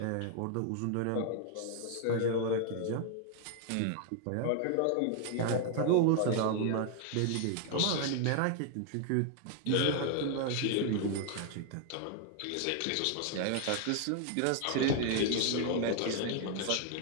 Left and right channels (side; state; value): both; different; correlation 0.00